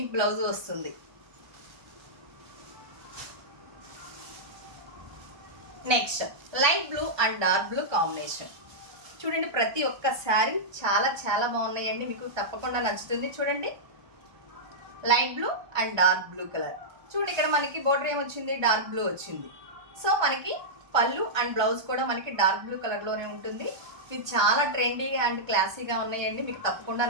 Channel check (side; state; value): left; late; 1.2 ms